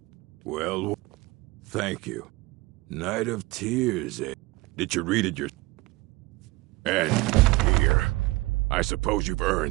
Well, thank you. Night of Tears, eh? Did you read it And here. I suppose you've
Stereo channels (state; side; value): quieter; left; 21.6 dB